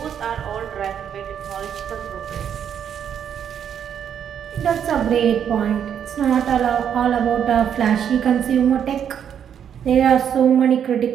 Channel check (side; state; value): left; quieter; 8.7 dB